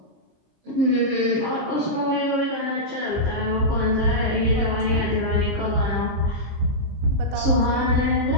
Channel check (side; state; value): left; late; 25 ms